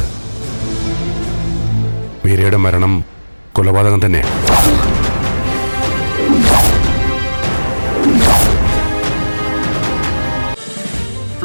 മീരയുടെ മരണം കൊലപാതകം തന്നെയാണ്.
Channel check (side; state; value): both; inverted; correlation -1.00